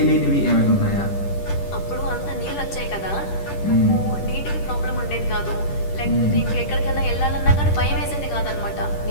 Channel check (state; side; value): late; right; 10 ms